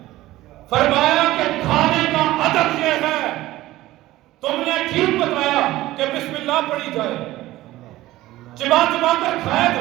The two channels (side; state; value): left; quieter; 16.5 dB